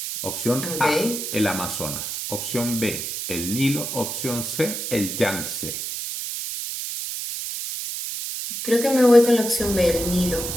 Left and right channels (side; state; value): right; noise; hiss, 5 dB below the sound